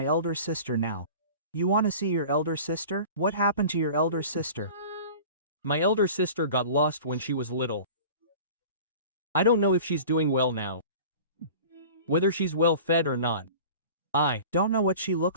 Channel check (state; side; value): inverted; both; correlation -0.40